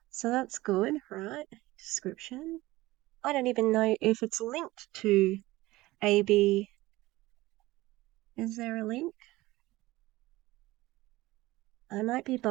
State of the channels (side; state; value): left; quieter; 18.7 dB